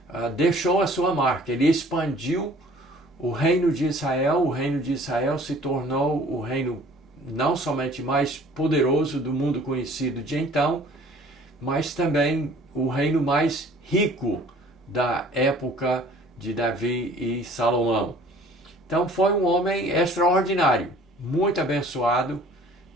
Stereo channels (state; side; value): normal; both; correlation 0.52